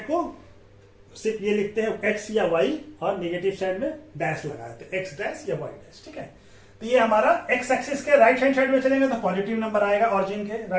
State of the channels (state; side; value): identical; both; correlation 1.00